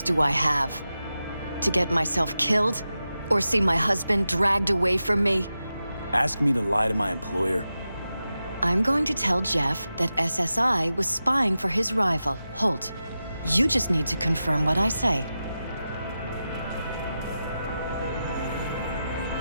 do I have? To get myself killed? Or see my husband dragged away from me? Ask me to lie to my employer. I'm going to tell Jeff that SSI was spying for his rival, Holt. You just need to confirm what I say.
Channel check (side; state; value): both; inverted; correlation -0.91